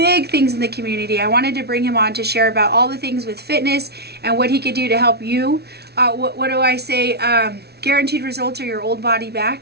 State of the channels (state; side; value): late; left; 0.48 ms